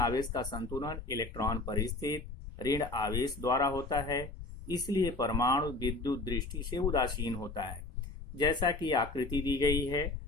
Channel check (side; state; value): right; quieter; 3.1 dB